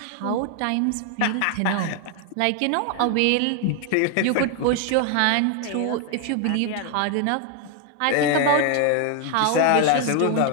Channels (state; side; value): different; both; correlation 0.00